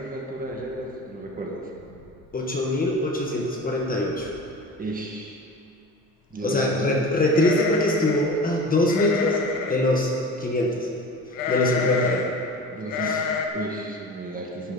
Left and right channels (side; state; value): both; normal; correlation 0.35